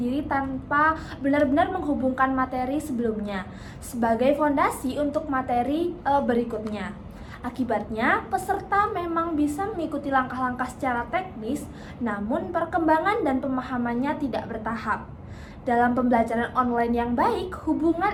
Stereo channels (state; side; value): identical; both; correlation 1.00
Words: tanpa benar-benar menghubungkan materi sebelumnya sebagai fondasi untuk materi berikutnya. Akibatnya, peserta memang bisa mengikuti langkah-langkah secara teknis, namun perkembangan dan pemahamannya tidak bertahap. Dalam pembelajaran online yang baik, hubungan